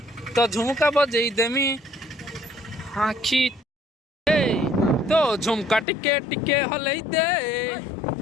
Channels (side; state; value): right; drops out; at 5.9 s